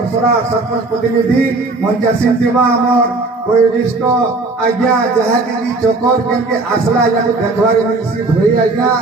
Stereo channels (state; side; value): quieter; left; 3.4 dB